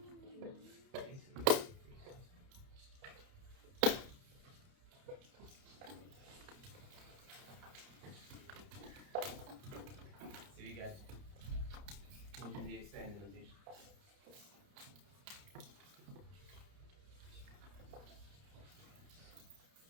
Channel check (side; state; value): left; late; 30 ms